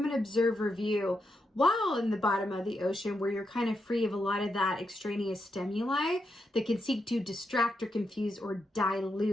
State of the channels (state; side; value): normal; both; correlation 0.83